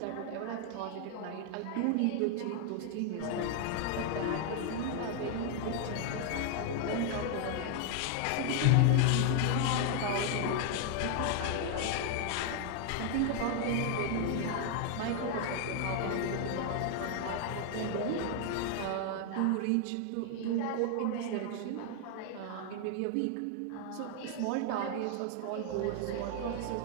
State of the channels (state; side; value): different; both; correlation 0.00